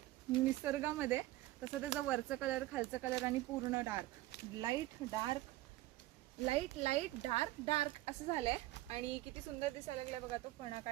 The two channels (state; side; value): quieter; left; 17.2 dB